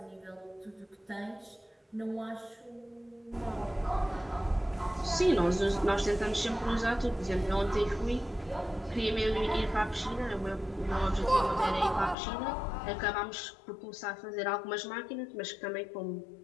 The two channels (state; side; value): drops out; right; at 12.2 s